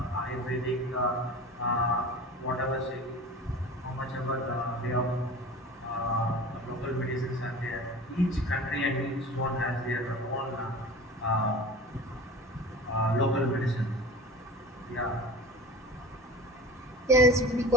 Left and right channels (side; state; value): both; normal; correlation 0.37